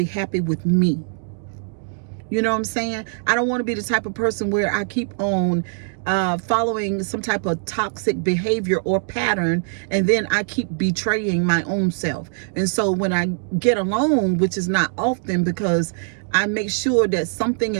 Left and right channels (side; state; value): left; silent; digital silence